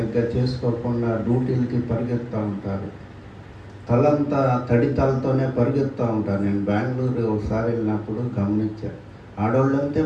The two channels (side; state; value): both; identical; correlation 1.00